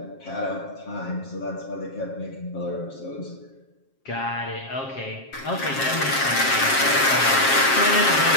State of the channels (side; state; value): right; late; 7.5 ms